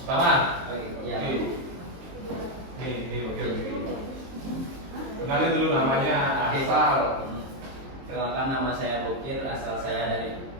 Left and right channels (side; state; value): left; late; 23 ms